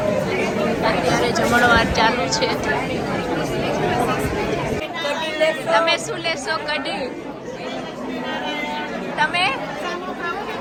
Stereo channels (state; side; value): identical; both; correlation 1.00